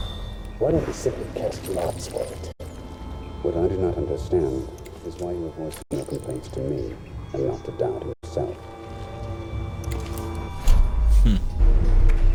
why don't we simply cast lots for it? What I do not understand is why you are voicing your complaints to me. and not to doubt himself.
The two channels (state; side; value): identical; both; correlation 1.00